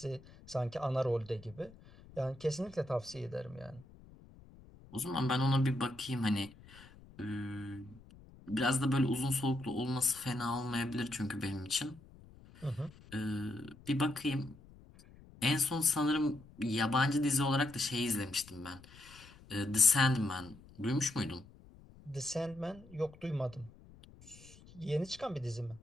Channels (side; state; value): left; noise; rumble, 22 dB below the sound